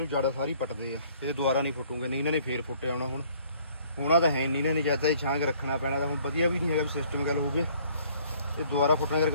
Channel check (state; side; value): inverted; both; correlation -0.59